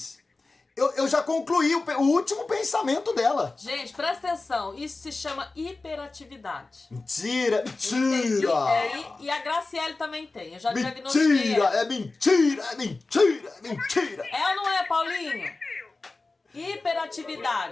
Eu já concluí o último pensamento dela. Gente, presta atenção. Isso se chama hiperatividade. Mentira, Tem- mentira. e a Graciele também tem. Eu já diagnostiquei. Mentira, ela. é mentira, é mentira, é mentira. É ou não é, Paulinho?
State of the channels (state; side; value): quieter; right; 3.5 dB